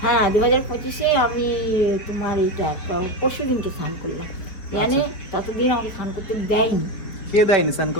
হ্যাঁ 2025-এ আমি তোমার এইটা পরশু দিনকে স্নান করলাম, জানে ততদিন আমাকে স্নান করতে দেয়নি। কে দেয়নি স্নান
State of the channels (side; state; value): right; late; 4.6 ms